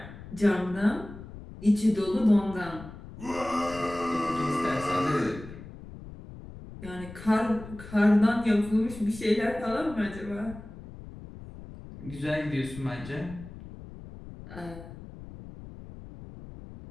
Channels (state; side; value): noise; left; rumble, 15 dB below the sound